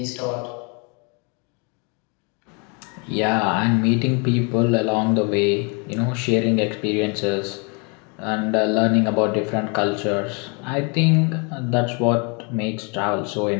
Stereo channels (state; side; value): quieter; right; 33.4 dB